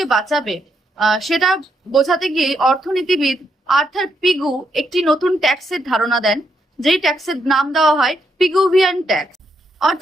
বাঁচাবে, সেটা বোঝাতে গিয়ে অর্থনীতিবিদ আর্থার পিগু একটি নতুন ট্যাক্সের ধারণা দেন, যেই ট্যাক্সের নাম দেওয়া হয় পিগুভিয়ান ট্যাক্স।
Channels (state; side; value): normal; both; correlation 0.78